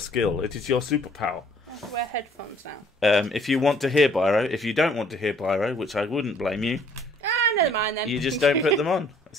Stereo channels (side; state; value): both; normal; correlation 0.60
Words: It is your superpower. I have to wear headphones now. If you want to hear Byro, if you don't want to hear Byro, which I wouldn't blame you. Never mind then. You just don't put them on.